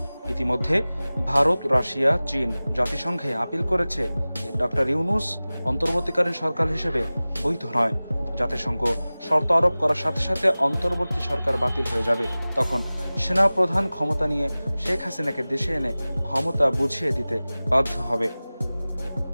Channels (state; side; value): inverted; both; correlation -0.98